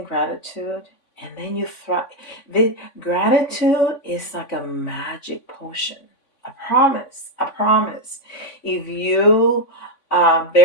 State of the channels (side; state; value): right; late; 3.5 ms